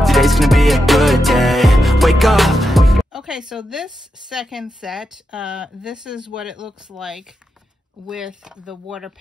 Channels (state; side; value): normal; both; correlation 0.86